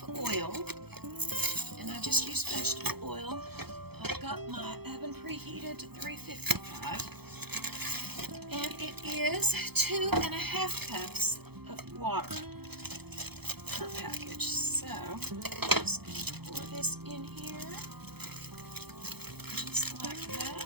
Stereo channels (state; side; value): late; left; 0.97 ms